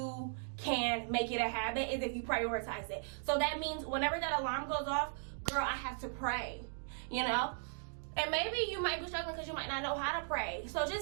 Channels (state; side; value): silent; left; digital silence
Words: can make it a habit, is if you prioritize it. So that means whenever that alarm goes off, girl, I have to pray, you know? And maybe you might be struggling because you might not know how to pray. So